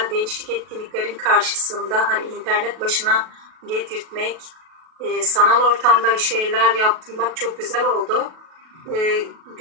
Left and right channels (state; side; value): late; left; 37 ms